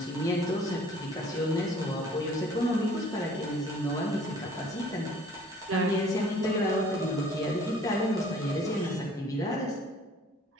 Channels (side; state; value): both; normal; correlation 0.54